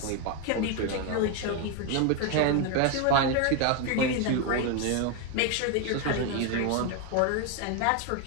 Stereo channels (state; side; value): different; both; correlation 0.01